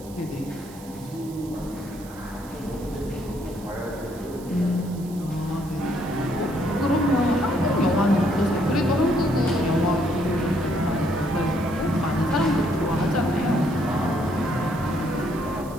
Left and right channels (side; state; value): right; noise; hiss, 21 dB below the sound